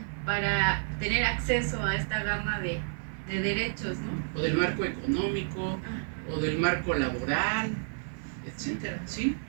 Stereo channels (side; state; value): left; silent; 58 dB below the other